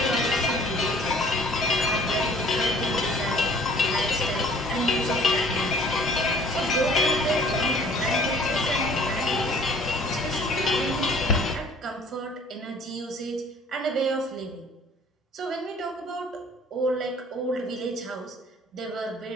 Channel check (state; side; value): normal; both; correlation 0.53